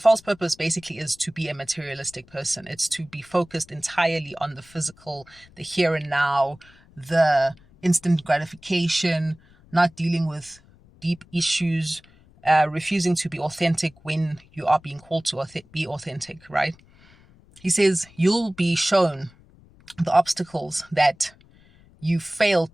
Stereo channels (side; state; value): left; noise; rumble, 27 dB below the sound